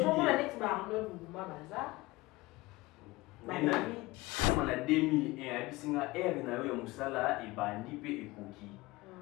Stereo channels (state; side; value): quieter; right; 20.8 dB